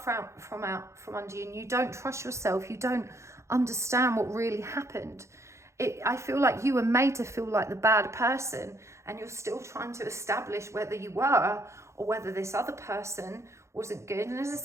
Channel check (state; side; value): late; left; 0.14 ms